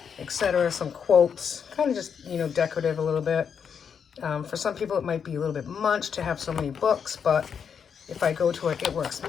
etc., some quotes, kind of just decorative a little bit. For some people it might be a little bit much to have so many books, but if I go to an It Works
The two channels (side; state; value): right; quieter; 7.1 dB